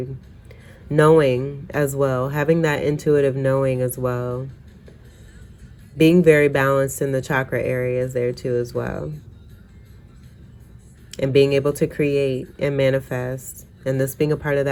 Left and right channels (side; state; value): both; identical; correlation 1.00